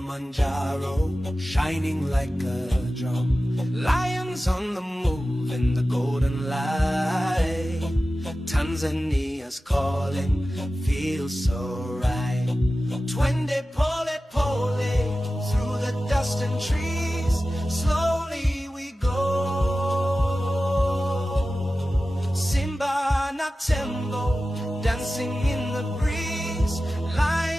shining like a drum. Lions on the move in the golden light. Tanzania's calling, feels so right. Twende pole pole, through the dust and trees, slowly we go. Simba na Tembo, dancing in the breeze.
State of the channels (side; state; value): both; normal; correlation 0.95